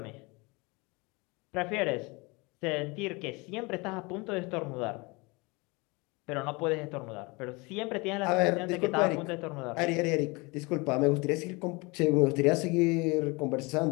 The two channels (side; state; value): right; quieter; 26.5 dB